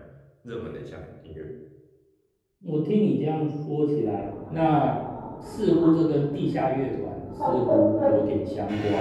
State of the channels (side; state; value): both; identical; correlation 1.00